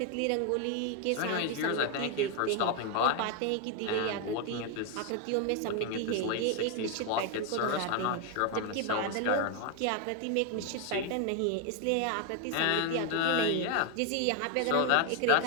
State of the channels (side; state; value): both; different; correlation 0.01